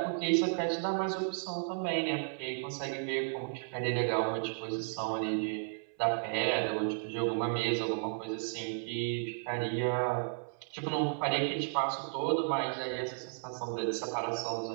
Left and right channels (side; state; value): left; silent; 55 dB below the other